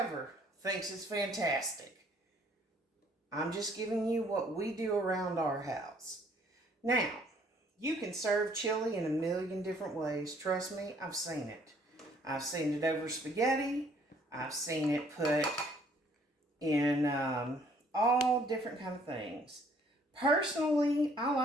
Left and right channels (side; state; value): both; normal; correlation 0.62